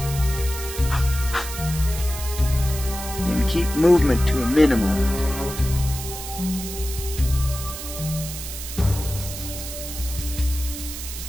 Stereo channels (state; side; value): noise; right; hiss, 9 dB below the sound